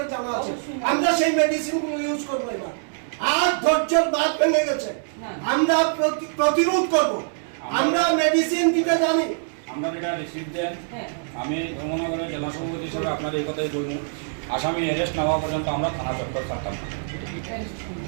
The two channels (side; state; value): left; silent; 62 dB below the other